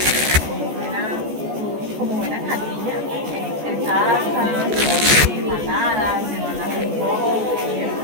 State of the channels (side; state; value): left; late; 14 ms